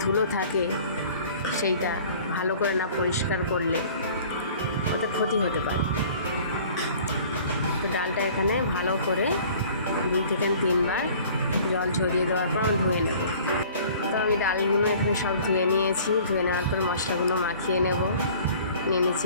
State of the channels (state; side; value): inverted; both; correlation -0.49